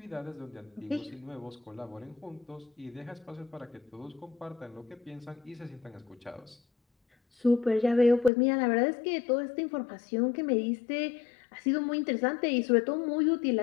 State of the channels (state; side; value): drops out; right; at 8.3 s